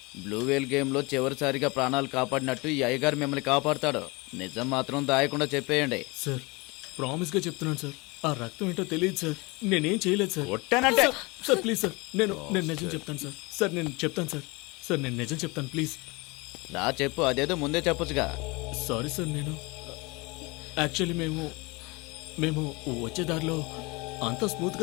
బ్లూ వేల్ గేమ్లో చివరిసారిగా ప్రాణాలు కాపాడినట్టు ఈ అయ్యగారు మిమ్మల్ని కాపాడుతాడు. నిజం మాత్రం దాయకుండా చెప్పేయండి. సార్ ప్రామిస్గా చెప్తున్నాను సార్. ఆ రక్తం ఏంటో తెలియదు సార్. నేనేం చేయలేదు సార్. కొట్టానంటే సార్ ప్లీజ్ సార్. నేను నిజం చెప్తాను సార్. సార్ నేను చెప్తాను సార్. సార్ నేను నిజం చెప్తాను ప్లీజ్. రా చెప్పు, అదేదో ముందే చెప్పొచ్చుగా. Sorry sir. నేను యాక్చువల్లీ మేము వచ్చే దారిలో అంతా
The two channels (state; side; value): quieter; right; 25.9 dB